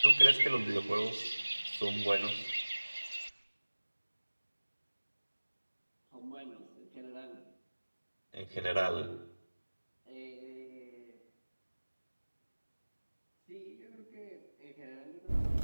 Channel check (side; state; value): both; inverted; correlation -1.00